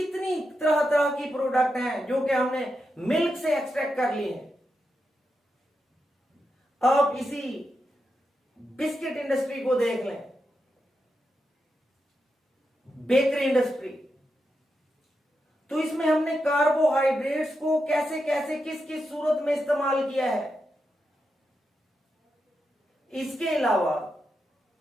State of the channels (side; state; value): both; normal; correlation 0.87